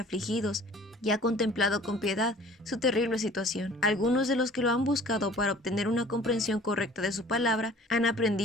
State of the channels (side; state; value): both; normal; correlation 0.49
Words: y ha contemplado con piedad su terrible situación. Algunos de los que lo han buscado para obtener una comprensión correcta de su palabra han